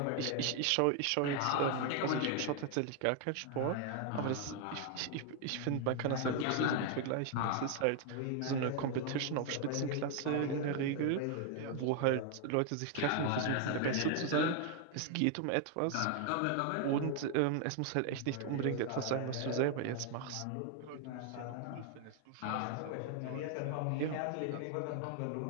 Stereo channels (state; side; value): different; both; correlation 0.00